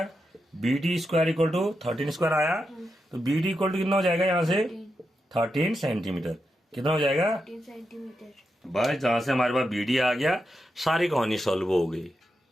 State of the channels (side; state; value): both; normal; correlation 0.87